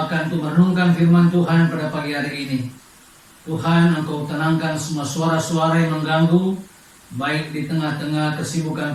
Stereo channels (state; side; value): identical; both; correlation 1.00